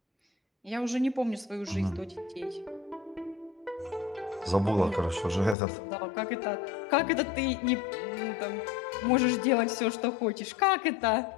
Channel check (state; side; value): drops out; right; at 5.6 s